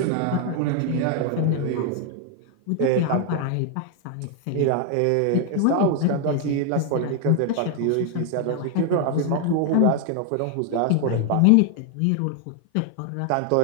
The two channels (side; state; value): both; different; correlation 0.00